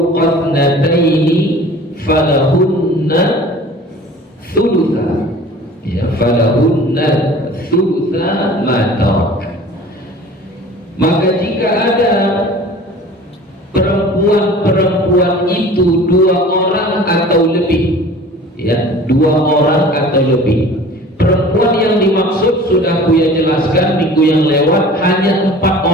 thnataini falahunna thulutha, ya, falahunna thulutha ma tarak. Maka jika ada perempuan itu 2 orang atau lebih, ya, 2 orang atau lebih. Perempuan yang dimaksud sudah Buya jelaskan minggu yang lewat, hanya 4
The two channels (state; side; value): normal; both; correlation 0.44